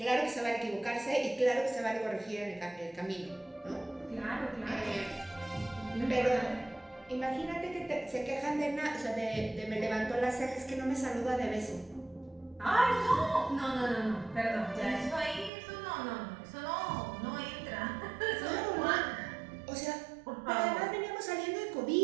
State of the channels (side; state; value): left; drops out; at 15.5 s